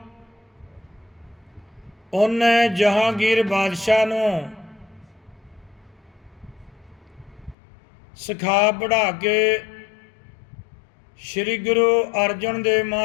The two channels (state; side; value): drops out; right; at 7.6 s